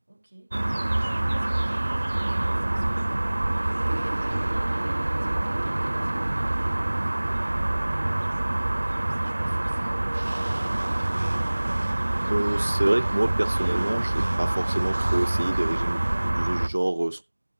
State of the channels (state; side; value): inverted; both; correlation -1.00